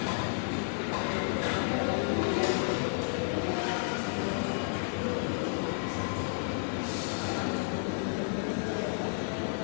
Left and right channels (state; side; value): silent; right; digital silence